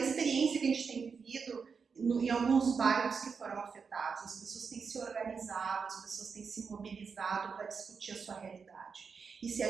que a gente tem vivido em alguns bairros que foram afetados. As pessoas têm se organizado, as pessoas têm se mobilizado para discutir a sua realidade. E se a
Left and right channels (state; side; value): quieter; left; 5.6 dB